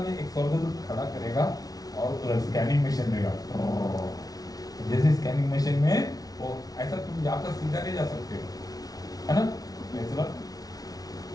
एक स्वर्गदूत खड़ा करेगा और स्कैनिंग मशीन देगा, जैसे स्कैनिंग मशीन में वो ऐसा तुम जाकर सीधा नहीं जा सकते हो, है ना? ऐसा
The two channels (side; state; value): right; late; 0.18 ms